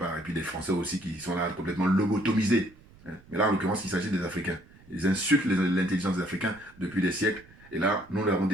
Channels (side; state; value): right; noise; rumble, 25 dB below the sound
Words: et puis des Français aussi qui sont là complètement lobotomisés. Hein. Mais là, en l'occurrence, il s'agit des Africains. Ils insultent l'intelligence des Africains depuis des siècles. Et là, nous avons